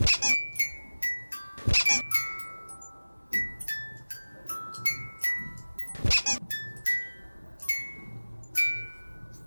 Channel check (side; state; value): both; inverted; correlation -1.00